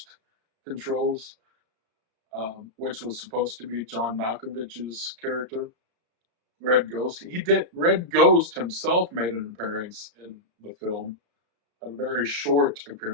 controls, which was supposed to be John Malkovich's character. Red Ghost. He did. Red Ghost himself made an appearance in the film, a very short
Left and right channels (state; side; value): late; left; 34 ms